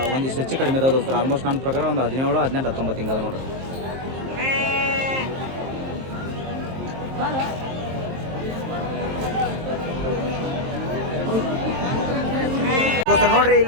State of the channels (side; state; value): left; late; 23 ms